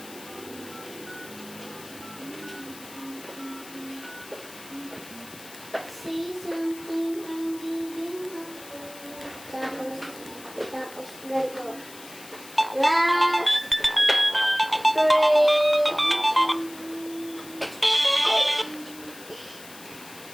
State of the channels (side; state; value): left; noise; hiss, 17 dB below the sound